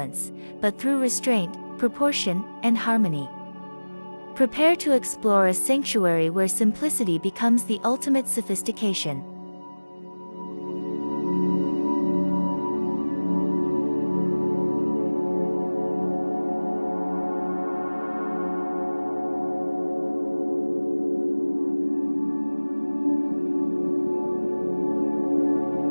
but through restraint, proportion, and harmony. Prepare to explore a sanctuary where simplicity becomes the ultimate sophistication.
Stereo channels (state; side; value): inverted; both; correlation -1.00